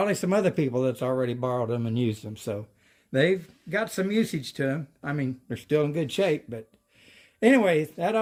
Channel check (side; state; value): both; identical; correlation 1.00